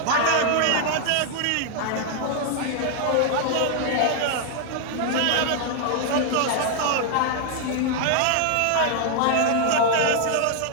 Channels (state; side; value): different; both; correlation 0.00